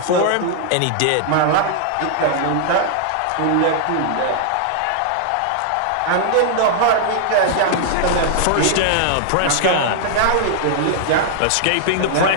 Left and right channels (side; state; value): both; different; correlation -0.01